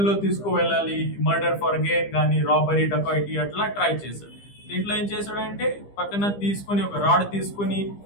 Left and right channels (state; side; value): late; right; 15 ms